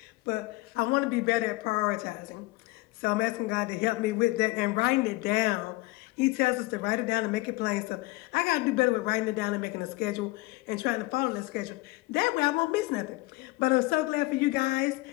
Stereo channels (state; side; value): quieter; right; 21.3 dB